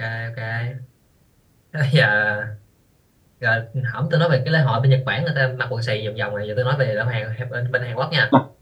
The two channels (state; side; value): identical; both; correlation 1.00